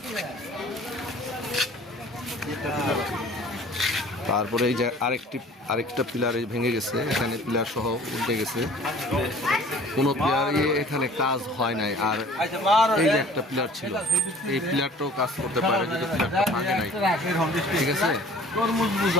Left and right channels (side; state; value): both; normal; correlation 0.49